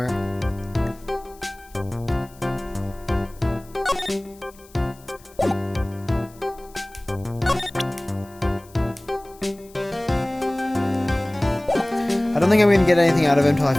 I don't think I'm gonna get anything out of him until I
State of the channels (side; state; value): left; noise; hiss, 25 dB below the sound